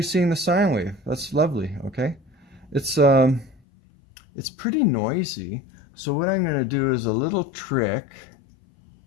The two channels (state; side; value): drops out; right; at 3.6 s